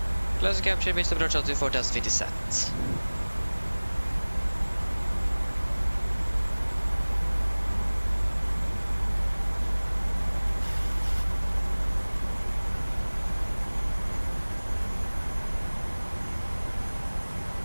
Close capture, Mr. Approach altitude 4000 feet is set.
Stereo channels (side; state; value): both; inverted; correlation -1.00